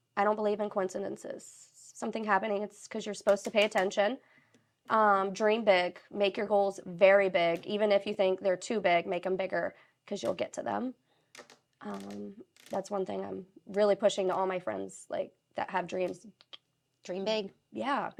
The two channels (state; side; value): identical; both; correlation 1.00